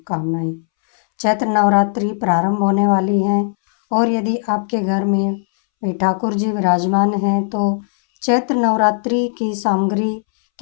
चैत्र नवरात्रि प्रारंभ होने वाली है और यदि आपके घर में ठाकुर जी विराजमान हैं तो चैत्र नवरात्रि की सामग्री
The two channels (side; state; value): right; silent; 66 dB below the other